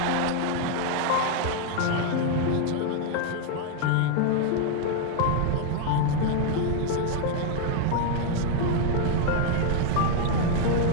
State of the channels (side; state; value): both; different; correlation 0.00